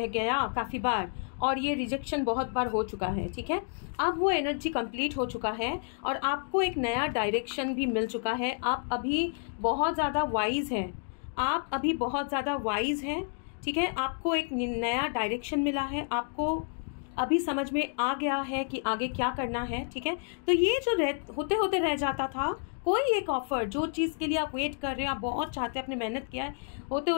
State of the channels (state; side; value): silent; right; 58 dB below the other